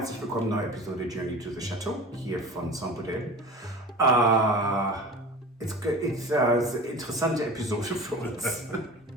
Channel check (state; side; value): normal; both; correlation 0.36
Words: willkommen, neue Episode Journey to the Chateau, hier von Saint-Gaudel. It's interessante Episode für uns.